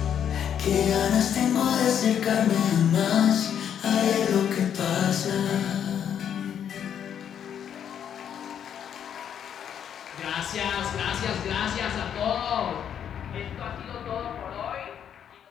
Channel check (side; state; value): right; quieter; 8.9 dB